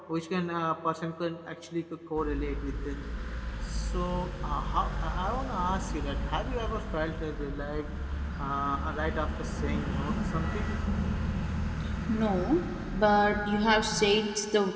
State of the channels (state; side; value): identical; both; correlation 1.00